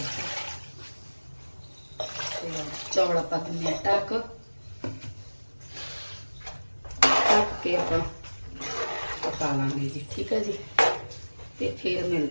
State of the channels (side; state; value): both; inverted; correlation -1.00